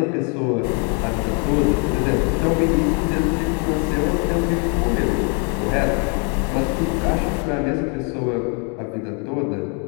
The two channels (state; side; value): quieter; right; 35.5 dB